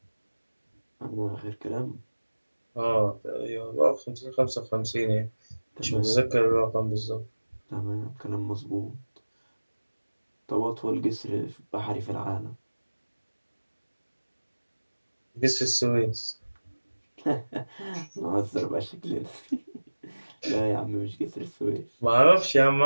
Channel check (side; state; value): both; inverted; correlation -1.00